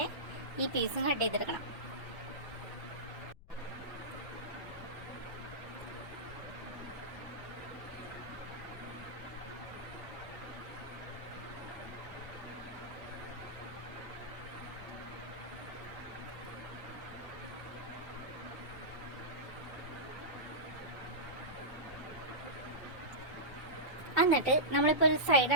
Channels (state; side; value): noise; left; rumble, 20 dB below the sound